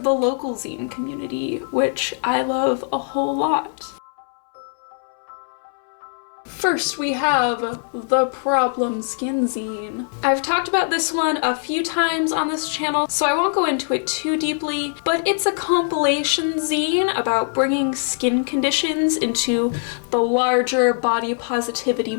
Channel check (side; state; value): right; silent; 64 dB below the other